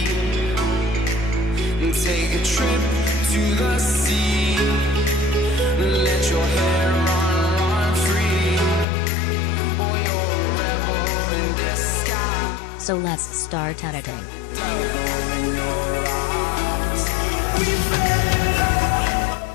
And take a trip to the sea, let your hair run free, or you're a rebel in disguise. So let's start editing.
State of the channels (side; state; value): right; drops out; at 8.8 s